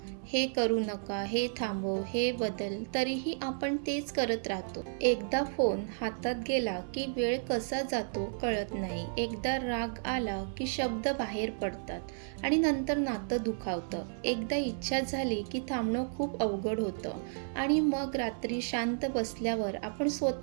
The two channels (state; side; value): silent; left; 56 dB below the other